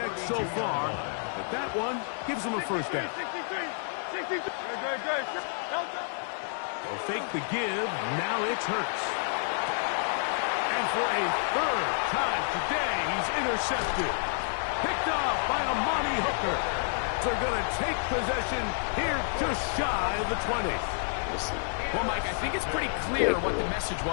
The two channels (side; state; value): right; silent; digital silence